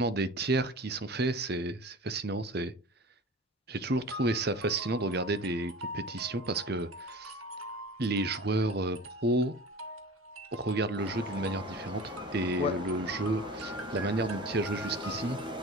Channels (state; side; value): normal; both; correlation 0.37